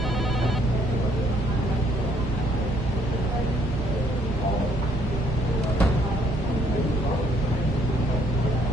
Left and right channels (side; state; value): both; normal; correlation 0.66